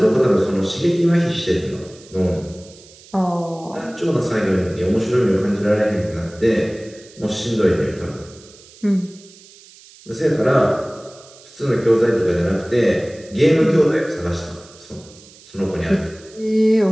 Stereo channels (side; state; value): right; noise; hiss, 23 dB below the sound